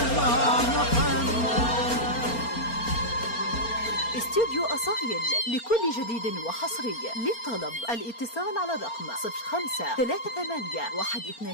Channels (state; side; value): late; right; 4.3 ms